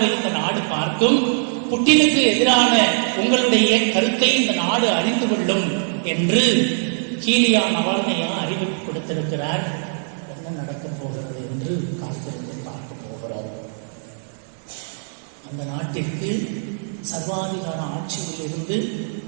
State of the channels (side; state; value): left; silent; digital silence